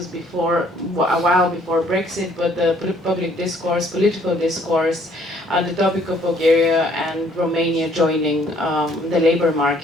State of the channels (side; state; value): both; normal; correlation 0.63